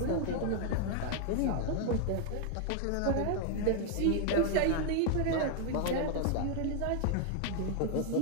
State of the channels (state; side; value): different; both; correlation 0.00